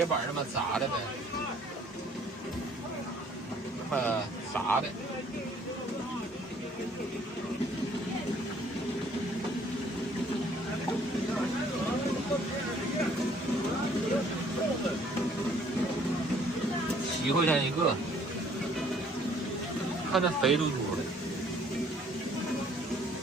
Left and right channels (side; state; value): both; normal; correlation 0.60